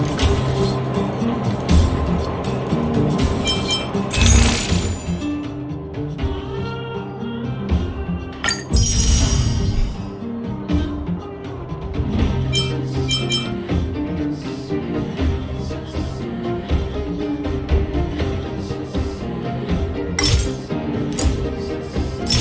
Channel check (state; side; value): identical; both; correlation 1.00